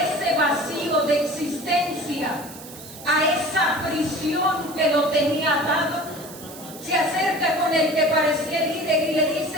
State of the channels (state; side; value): noise; right; hiss, 16 dB below the sound